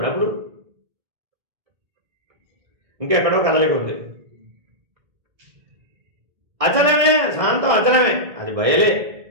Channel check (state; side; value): late; left; 1.6 ms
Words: అప్పుడు ఇంకెక్కడో కదలిక ఉంది. అచలమే, శాంతం అచలమే, అది బయలే